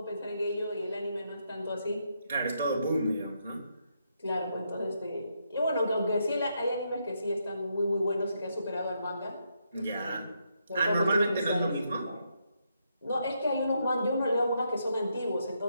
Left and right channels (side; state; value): both; inverted; correlation -0.79